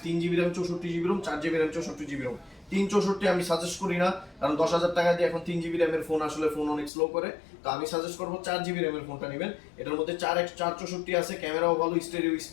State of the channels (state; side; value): drops out; right; at 6.9 s